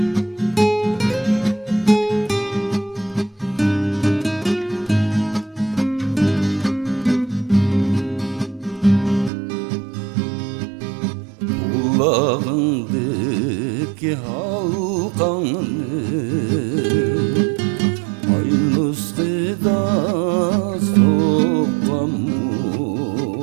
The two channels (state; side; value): drops out; left; at 9.3 s